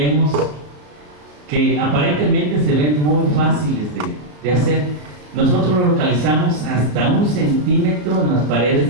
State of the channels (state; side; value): late; left; 33 ms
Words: que aparentemente se ven muy fáciles de hacer, Nosotros lo localizamos hasta 1 centímetro en las